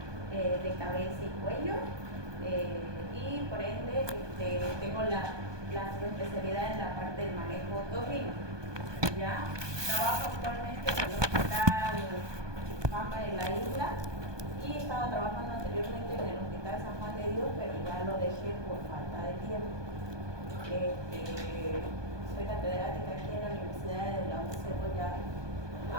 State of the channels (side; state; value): left; late; 1.2 ms